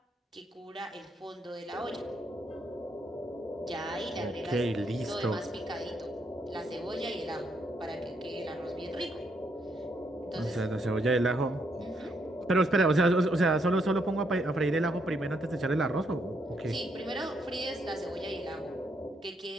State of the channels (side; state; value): both; normal; correlation 0.76